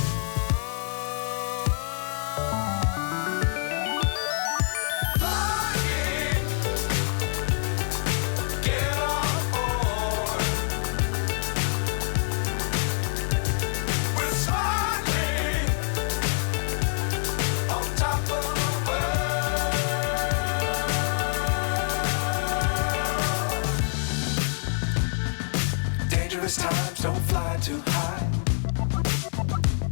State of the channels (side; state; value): right; silent; 61 dB below the other